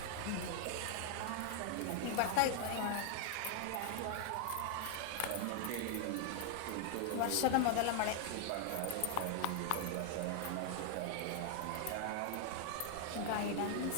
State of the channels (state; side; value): different; both; correlation 0.00